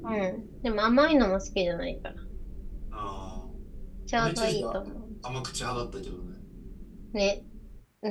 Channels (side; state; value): both; identical; correlation 1.00